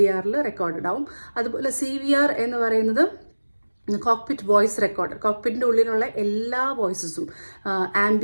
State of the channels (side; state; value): both; inverted; correlation -1.00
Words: റെക്കോർഡഡ് ആവും. അതുപോലെ CVR എന്ന് പറയുന്നത് കോക്പിറ്റ് വോയിസ് റെക്കോർഡർ. കോക്പിറ്റിൻ്റെ ഉള്ളിലുള്ള എല്ലാ വോയിസസും,